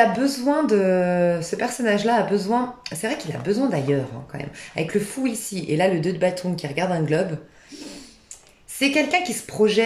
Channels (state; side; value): identical; both; correlation 1.00